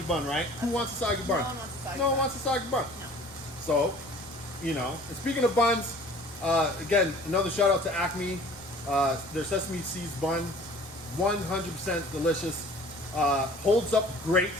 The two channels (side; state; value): both; normal; correlation 0.48